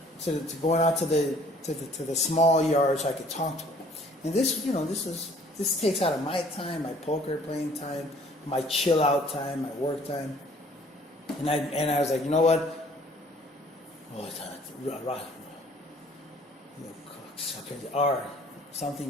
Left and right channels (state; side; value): normal; both; correlation 0.56